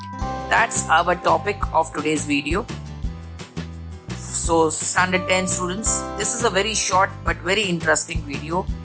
That's our topic of today's video. So standard 10 students, this is a very short but very interesting video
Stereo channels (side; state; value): both; identical; correlation 1.00